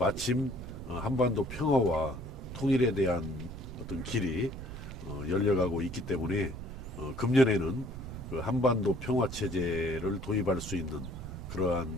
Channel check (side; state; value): right; noise; rumble, 10 dB below the sound